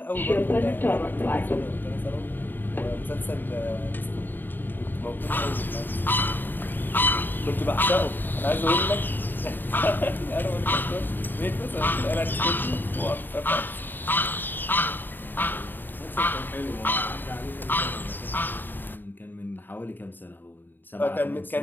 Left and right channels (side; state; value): right; late; 0.092 ms